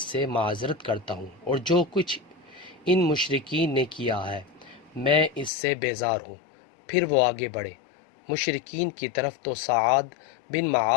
سے معذرت کرتا ہوں، اور جو کچھ ان مشرکین نے کیا ہے میں اس سے بیزار ہوں۔ پھر وہ آگے بڑھے مشرکین کی طرف تو سعد بن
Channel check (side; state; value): right; drops out; at 5.5 s